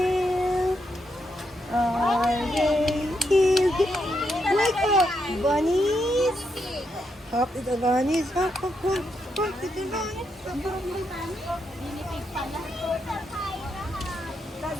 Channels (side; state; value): both; normal; correlation 0.81